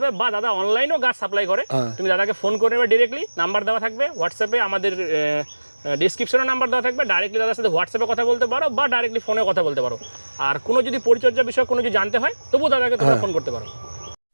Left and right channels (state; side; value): inverted; both; correlation -1.00